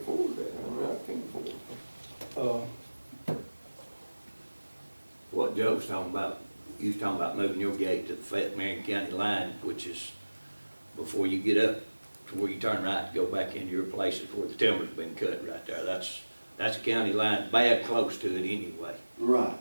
that, I mean, I can't afford it. What Joe was talking about, you was talking about moving your gate to the Fayette Marion County line, which is before you get up to where you turn right to go back into your places where the timber's been cut right there. That's a county line, bad close to it anyway. Right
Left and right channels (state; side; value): inverted; both; correlation -1.00